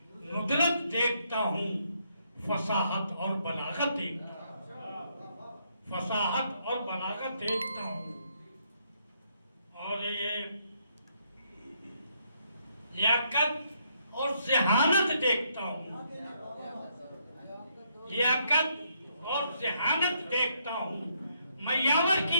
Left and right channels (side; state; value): both; inverted; correlation -0.73